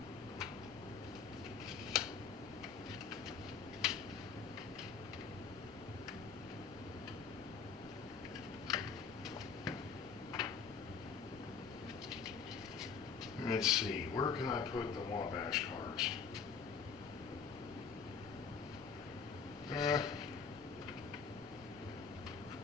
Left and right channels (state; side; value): quieter; right; 5.9 dB